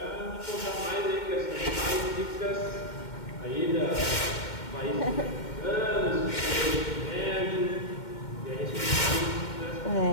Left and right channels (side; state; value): right; late; 2.1 ms